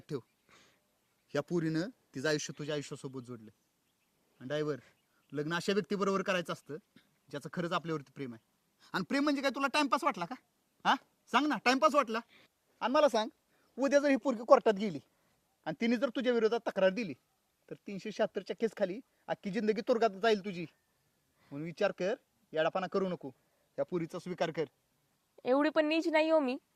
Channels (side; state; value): both; identical; correlation 1.00